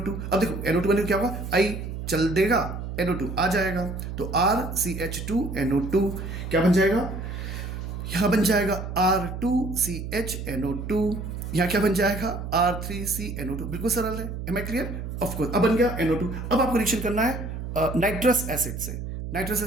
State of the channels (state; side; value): noise; right; hum, 7 dB below the sound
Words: अब देखो NO2 बने क्या होगा, I चल देगा, NO2 आ जाएगा, तो RCH2NO2 क्या बन जाएगा, यहां बन जाएगा R2CHNO2, यहाँ क्या बन जाएगा, R3CNO2। बिल्कुल सरल है। Am I clear? Of course. अब बन गया NO2। अब आपको रिएक्शन करना है नाइट्रस एसिड से। नाइट्रस